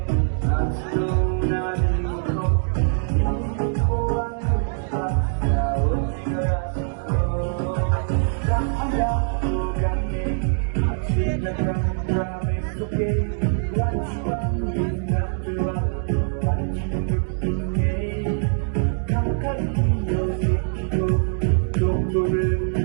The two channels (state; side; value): silent; left; 63 dB below the other